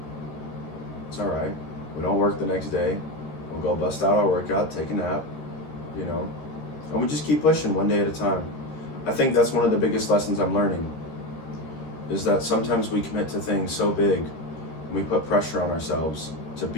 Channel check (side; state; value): right; late; 13 ms